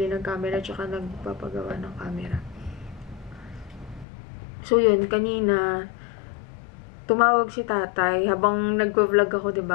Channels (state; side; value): drops out; right; at 4.0 s